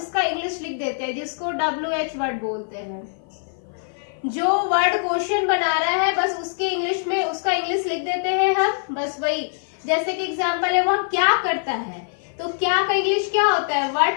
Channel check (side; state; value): right; silent; 55 dB below the other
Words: इंग्लिश लिख देते हैं, जिसको WH वर्ड बोलते हैं। जो वर्ड क्वेश्चन बना रहा है बस उसके इंग्लिश में उसका इंग्लिश लिख देते हैं हम, बस वही। जैसे कि एग्जांपल है, वह क्या करता है, तो क्या का इंग्लिश क्या होता है,